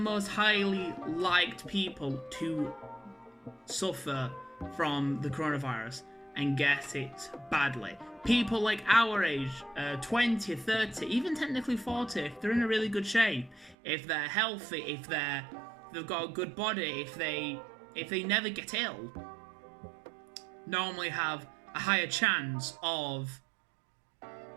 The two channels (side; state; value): left; drops out; at 13.8 s